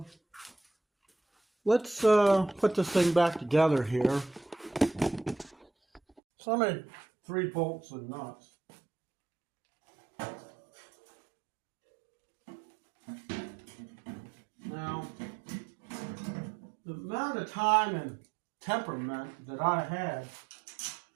let's put this thing back together here. So I made 3 bolts and nuts. Now, the amount of time and temperament that I had,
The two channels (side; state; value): left; drops out; at 6.2 s